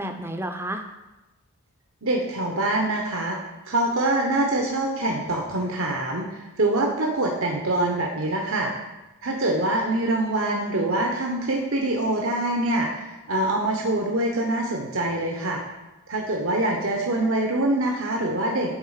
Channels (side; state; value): both; normal; correlation 0.09